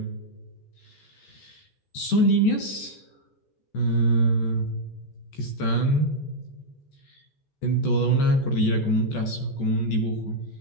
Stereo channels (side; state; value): right; late; 14 ms